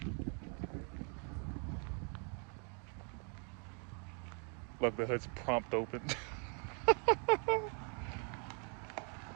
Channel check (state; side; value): quieter; left; 39.5 dB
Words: Look, the hood's prompt open.